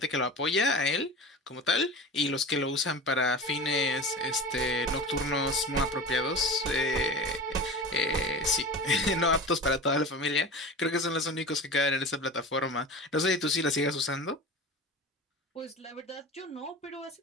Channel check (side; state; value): both; normal; correlation 0.32